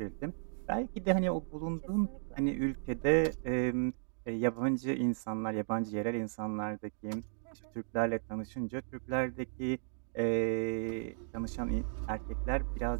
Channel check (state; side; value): silent; left; digital silence